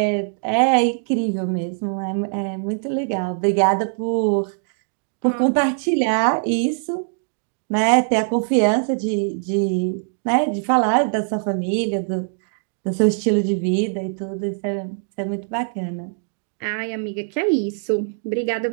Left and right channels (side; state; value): left; silent; digital silence